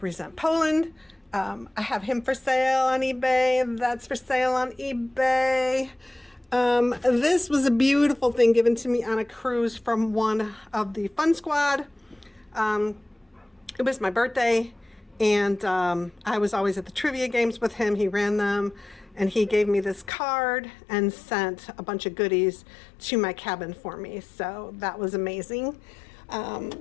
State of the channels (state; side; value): drops out; right; at 20.1 s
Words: Poland. I have him for sale on eBay. That's for sale on eBay. This was a beautiful thing given to me on a cruise from one of the Fun Squad. It was my birthday, and I was always at the trivia games with him. He ran them, and he gave me this card and sent a bunch of goodies to my cabin for me. So that was amazing.